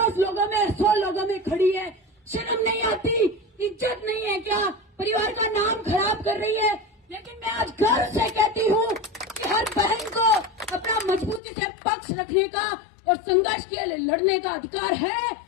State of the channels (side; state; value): right; drops out; at 11.4 s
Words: लोगों में, 100 लोगों में खड़ी है, शर्म नहीं आती, इज्जत नहीं है क्या, परिवार का नाम खराब कर रही है। लेकिन मैं आज गर्व से कहती हूँ कि हर बहन को अपना मजबूती से पक्ष रखने का और संघर्ष के लिए लड़ने का अधिकार है।